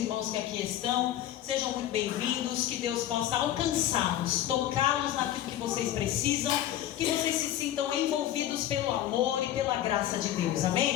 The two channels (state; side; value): quieter; right; 12.4 dB